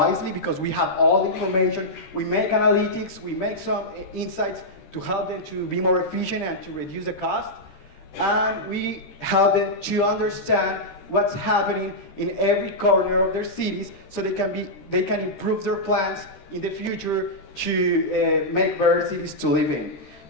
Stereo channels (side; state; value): right; late; 13 ms